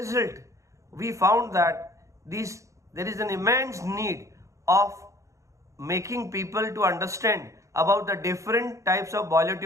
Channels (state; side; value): late; left; 0.15 ms